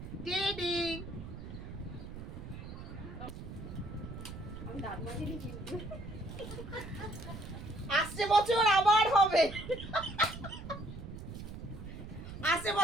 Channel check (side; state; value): right; noise; rumble, 10 dB below the sound